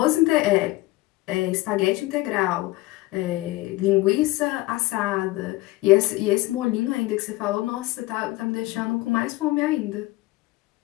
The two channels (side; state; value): right; quieter; 19.7 dB